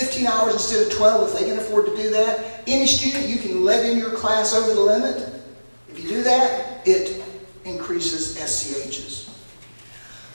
hours instead of 12 if they can afford to do that. Any student you can let in your class over the limit. If you do that, it increases SCHs.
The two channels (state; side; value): inverted; both; correlation -1.00